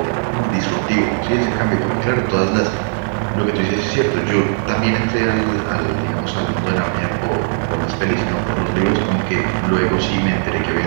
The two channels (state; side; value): silent; left; 64 dB below the other